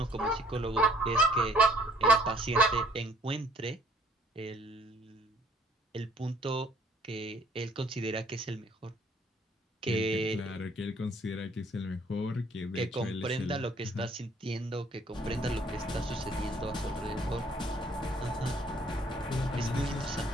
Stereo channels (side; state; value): both; normal; correlation 0.61